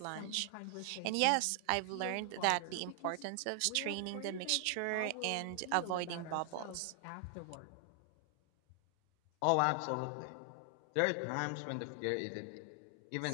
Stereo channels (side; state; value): both; different; correlation 0.00